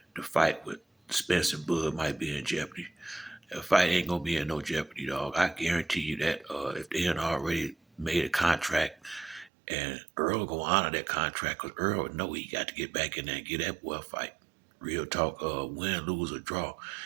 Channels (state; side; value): drops out; left; at 9.5 s